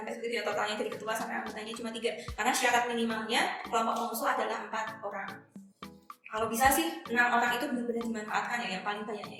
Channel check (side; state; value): both; identical; correlation 1.00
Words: sampai seperti itu ya, totalnya dari ketua sampai anggotanya cuma 3, karena syarat minimalnya kelompok pengusul adalah 4 orang. Kalau bisa sih 6 orang itu benar-benar dimanfaatkan ya, yang paling banyaknya